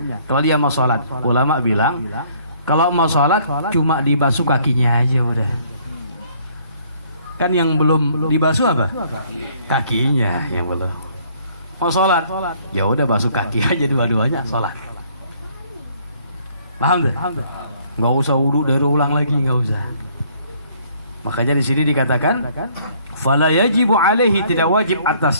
Kalau dia mau sholat, ulama bilang kalau mau sholat cuma dibasuh kakinya aja udah. Kan yang belum dibasuh apa? Kakinya yang belum. Mau sholat, ya udah basuh kaki aja dua-duanya sholat. Paham tuh? Nggak usah wudu dari ulang lagi, nggak usah. Makanya di sini dikatakan fala yajibu alaihi, tidak wajib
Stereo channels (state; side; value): inverted; both; correlation -0.62